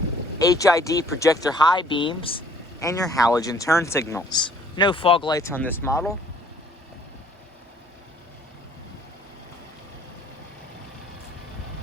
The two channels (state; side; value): normal; both; correlation 0.59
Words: HID projector high beams, and your halogen turn signals. No fog lights on this model.